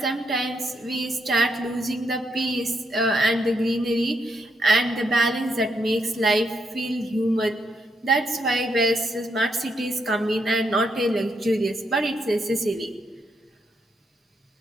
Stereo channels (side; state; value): both; normal; correlation 0.78